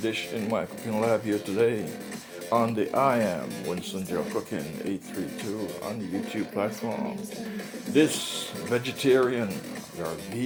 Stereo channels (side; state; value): both; identical; correlation 1.00